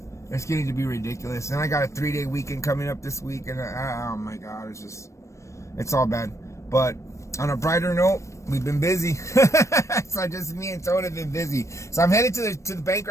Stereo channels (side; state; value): right; late; 0.15 ms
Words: it's getting to be ridiculous. And I got a 3-day weekend coming up this week, and oh my God, it's all bad. But on a brighter note, we've been busy. So just me and Tone have been busy. So I'm headed to the bank